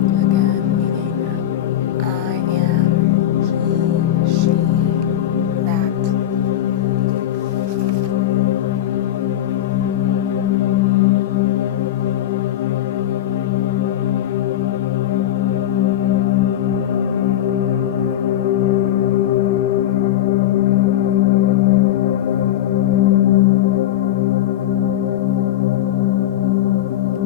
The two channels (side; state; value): right; quieter; 11.9 dB